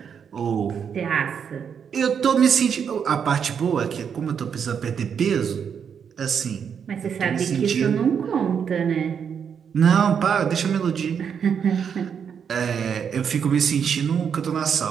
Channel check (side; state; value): left; quieter; 7.3 dB